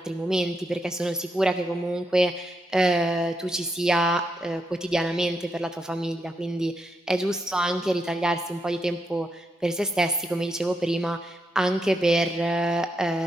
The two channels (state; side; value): normal; both; correlation 0.82